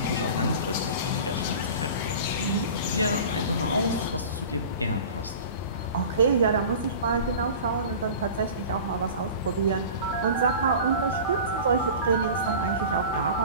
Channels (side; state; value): both; inverted; correlation -0.38